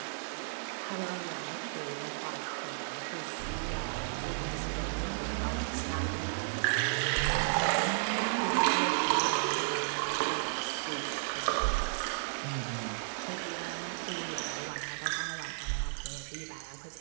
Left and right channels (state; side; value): silent; left; 55 dB below the other